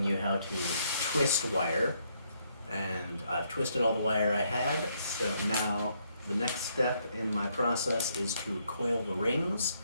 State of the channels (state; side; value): inverted; both; correlation -0.73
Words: you how to twist wire. And I've twisted all the wire I had, so now the next step in my process is to coil the rings